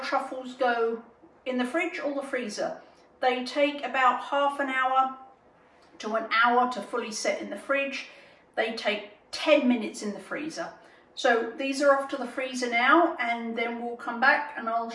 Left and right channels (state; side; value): identical; both; correlation 1.00